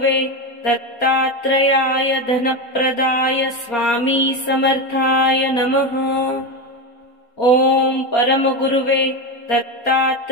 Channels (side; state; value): right; late; 4.3 ms